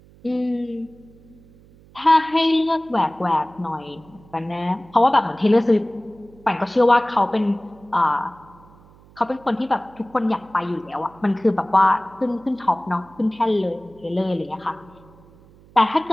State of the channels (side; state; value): right; noise; hum, 26 dB below the sound